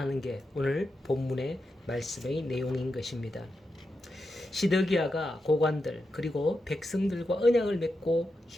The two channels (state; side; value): normal; both; correlation 0.88